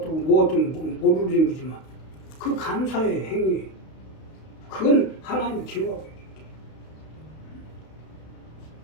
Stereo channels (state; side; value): late; right; 32 ms